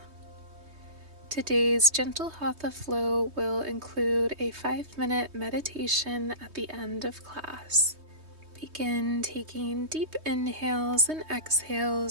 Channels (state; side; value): late; left; 3.2 ms